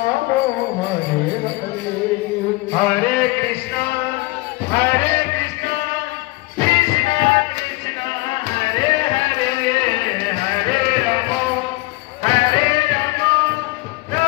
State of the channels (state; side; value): quieter; right; 22.1 dB